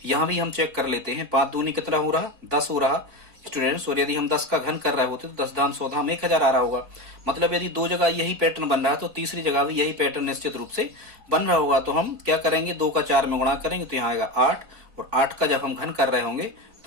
यहां भी हम चेक कर लेते हैं, 5 दूनी कितना हो रहा 10 हो रहा स्टूडेंट्स, और यदि हम 10 का घन कर रहे होते तो 10 दान 14 में 1000 आ रहा होगा। मतलब यदि 2 जगह यही पैटर्न बन रहा है तो तीसरी जगह भी यही पैटर्न निश्चित रूप से बन रहा होगा। तो हम क्या करेंगे, 2 का 4 में गुणा करेंगे तो यहाँ आएगा 8, और 8 का जब हम घन कर रहे होंगे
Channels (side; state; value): left; late; 4.6 ms